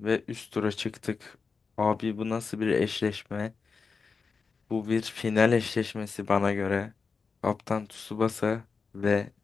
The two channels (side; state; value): right; quieter; 5.0 dB